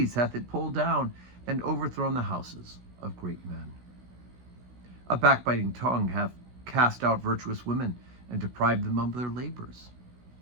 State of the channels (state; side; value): late; left; 16 ms